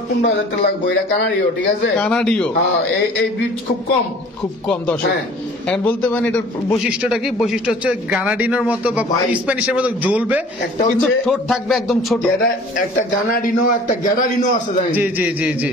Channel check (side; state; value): both; normal; correlation 0.48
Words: হাজার টাকা লাগবে। এটা কানাডিও, ঠিক আছে? কানাডিও হ্যাঁ এই ব্রিড খুব কম। খুব কম দর্শক। হ্যাঁ এখন বলতে পারেন এটার বৈশিষ্ট্যটা কি? বৈশিষ্ট্য হচ্ছে গানাডিনোর মতো বা ভাই, স্প্যানিশের মতো জ্বলবে, একটা কিন্তু হচ্ছে- ঠোঁট থাকবে একদম ছোট। এটা একটা গানাডিনো, একটা গ্যাডারিনো আছে জানেন? জি জি জি জি,